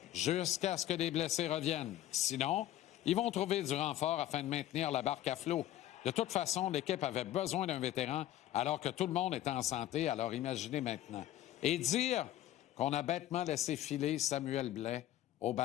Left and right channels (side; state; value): right; quieter; 13.4 dB